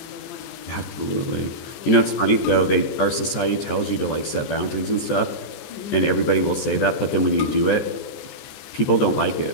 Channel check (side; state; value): right; late; 14 ms